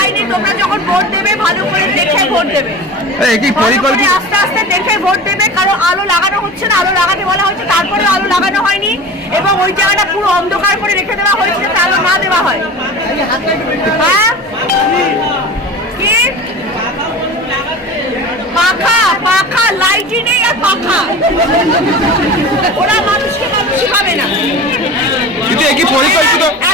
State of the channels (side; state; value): both; normal; correlation 0.34